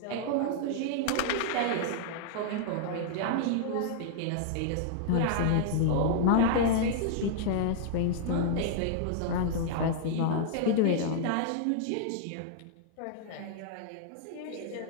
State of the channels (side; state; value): both; different; correlation -0.01